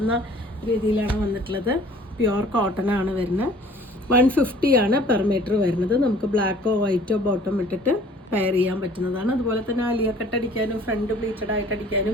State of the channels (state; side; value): normal; both; correlation 0.52